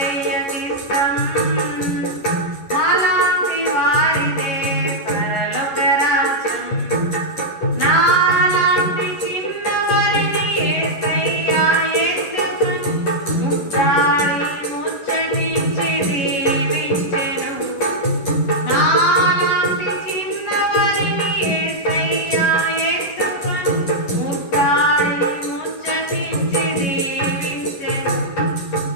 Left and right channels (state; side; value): late; right; 11 ms